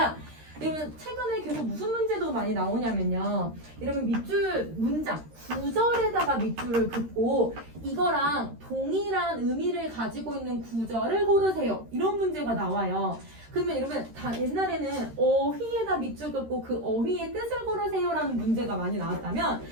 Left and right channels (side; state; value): left; late; 13 ms